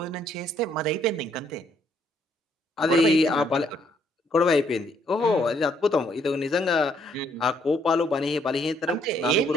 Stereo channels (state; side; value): normal; both; correlation 0.69